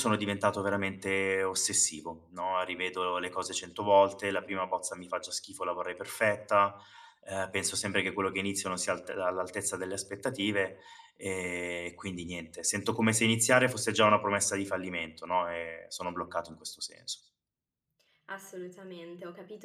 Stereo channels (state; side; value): identical; both; correlation 1.00